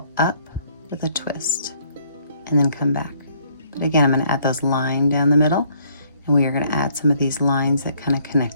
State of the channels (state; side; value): inverted; both; correlation -0.65